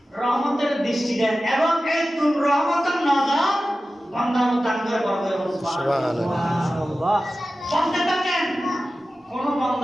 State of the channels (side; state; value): both; normal; correlation 0.95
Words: রহমতের দৃষ্টি দেন এবং এই তুম রহমতের নজর বান্দার দান করে বড় করে সুবহানাল্লাহ বলতে থাকেন কোন